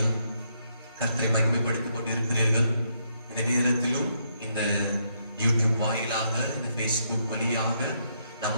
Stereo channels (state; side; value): inverted; both; correlation -0.76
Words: கர்த்தரை மகிமைப்படுத்திக் கொண்டிருக்கிறீர்கள். இந்த நேரத்திலும் இந்த யூடியூப் வாயிலாக, இந்த பேஸ்புக் வழியாக